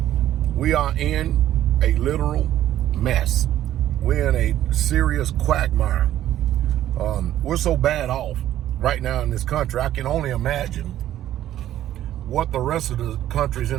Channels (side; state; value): left; quieter; 12.5 dB